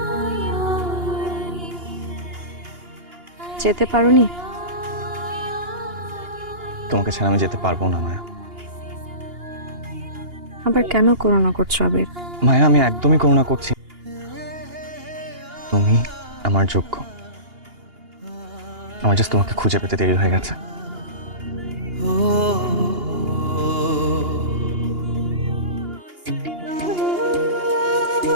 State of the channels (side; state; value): left; late; 2.8 ms